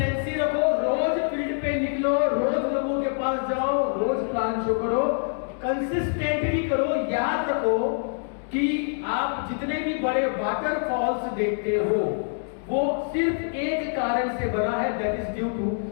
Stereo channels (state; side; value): silent; right; digital silence